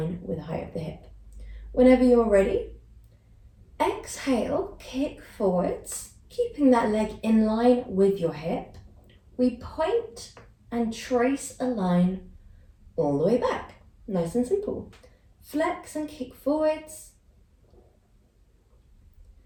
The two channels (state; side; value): identical; both; correlation 1.00